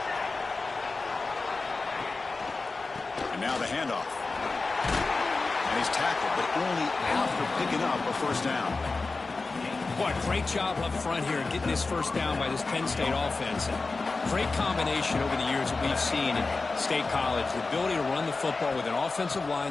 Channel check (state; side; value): quieter; right; 3.8 dB